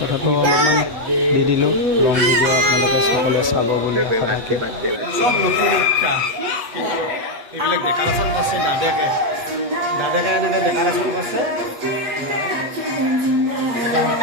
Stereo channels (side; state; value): left; late; 8.2 ms